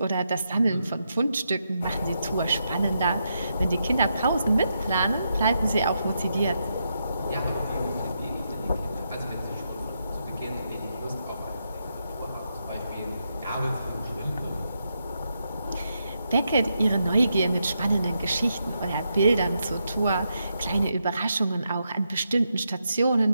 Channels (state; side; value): inverted; both; correlation -0.82